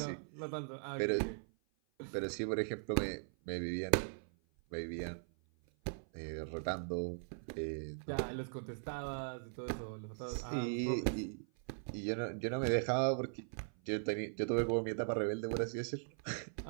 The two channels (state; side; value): silent; left; 51 dB below the other